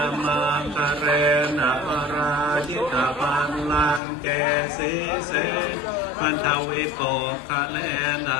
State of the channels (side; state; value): right; drops out; at 4.0 s